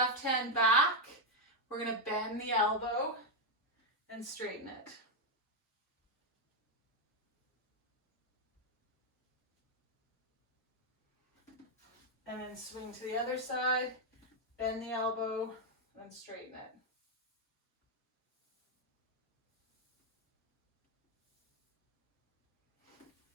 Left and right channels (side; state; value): both; normal; correlation 0.01